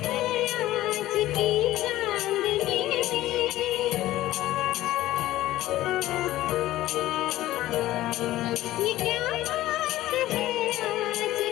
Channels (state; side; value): quieter; right; 15.5 dB